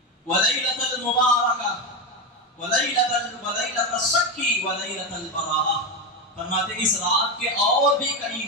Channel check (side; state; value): both; normal; correlation 0.13